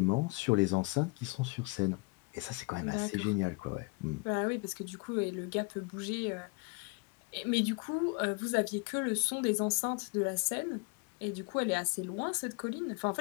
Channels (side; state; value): right; quieter; 28.2 dB